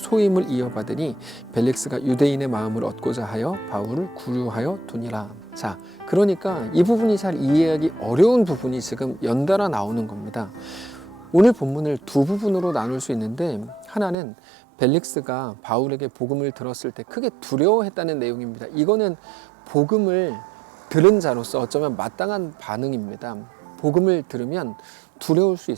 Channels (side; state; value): left; drops out; at 14.2 s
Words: 이어받으니 벨릭스가 유대인의 마음을 얻고자 하여 바울을 구류하여 두니라. 자, 그러니까 이 부분이 잘 이해하기 어려운 부분이 지금 연달아 나오는 겁니다. 오늘 본문을 두 부분으로 나눌 수 있는데, 하나는 벨릭스가 바울에게 복음을 들었을 때 크게 두려워했다는 내용입니다. 이거는 복음을 들은 자로서 어쩌면 마땅한 반응입니다. 복음을 들으면 두려울 수